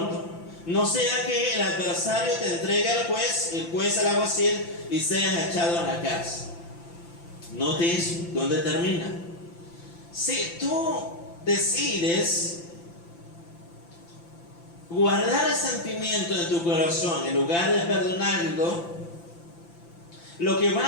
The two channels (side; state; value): right; late; 5.9 ms